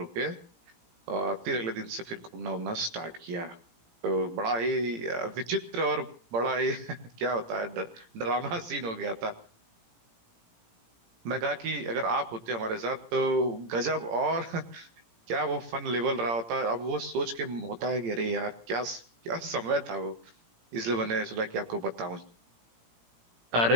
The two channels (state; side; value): late; left; 18 ms